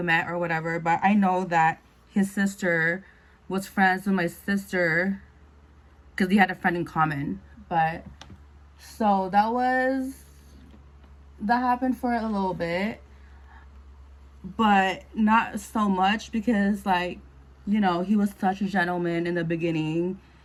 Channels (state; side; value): identical; both; correlation 1.00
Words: or whatever, but I know that his sister was friends with my sister because he had a friend in common. But so that happened for a little bit, but not so much because he was such a gentleman in the beginning.